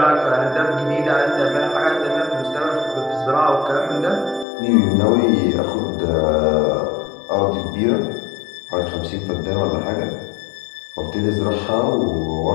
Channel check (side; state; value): right; drops out; at 4.5 s